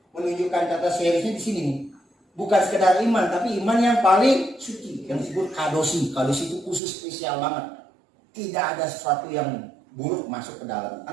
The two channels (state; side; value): drops out; left; at 6.8 s